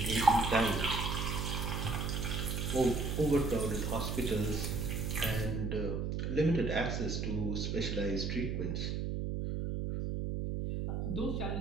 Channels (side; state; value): right; noise; hum, 1 dB below the sound